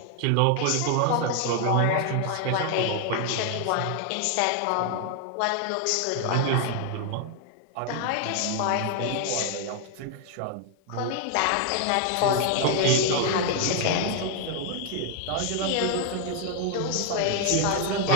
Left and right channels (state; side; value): different; both; correlation 0.00